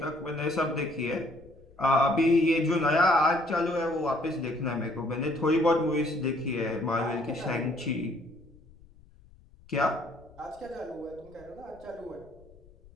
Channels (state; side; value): noise; left; rumble, 25 dB below the sound